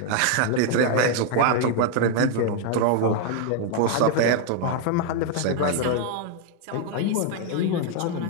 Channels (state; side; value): different; both; correlation 0.00